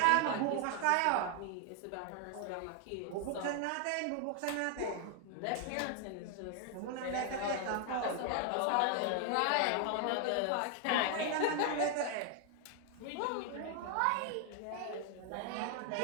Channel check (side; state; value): both; different; correlation 0.00